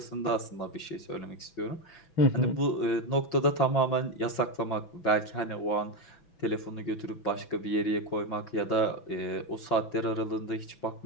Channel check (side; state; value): right; late; 6.0 ms